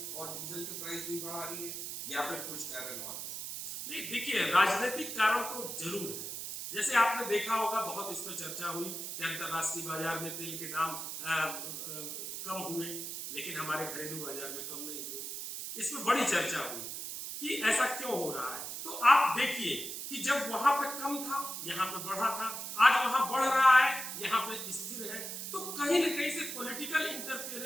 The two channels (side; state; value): right; noise; hiss, 6 dB below the sound